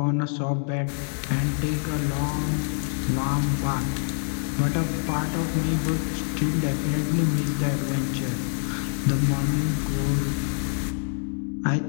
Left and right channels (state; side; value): silent; right; 58 dB below the other